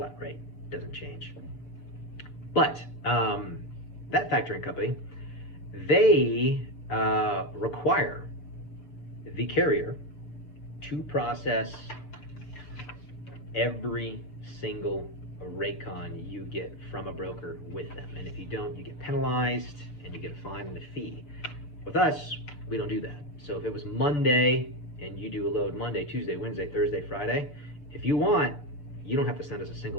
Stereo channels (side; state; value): right; late; 6.9 ms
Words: rate, doesn't change. But that factoring company, they require the carrier to process every single raycon you get from a broker with them. And if you don't, you get penalized and you get a fine and a fee. With us, we don't do that. So if it was Monday and you do a load Monday, Tuesday, Wednesday, Thursday, Friday, if you want, you don't have to send us a